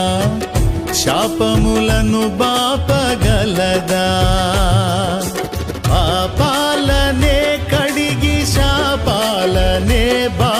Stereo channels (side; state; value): both; identical; correlation 1.00